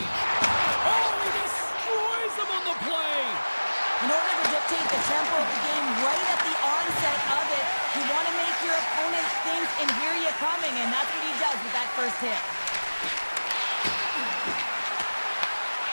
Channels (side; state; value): both; inverted; correlation -1.00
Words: Oh, he destroys them on the play. In order to dictate the tempo of the game right at the onset of it, you want to make your opponent think and hear you coming, and that's what he does with that first hit.